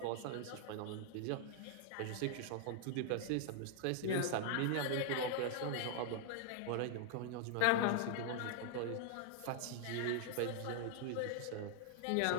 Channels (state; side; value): different; both; correlation 0.00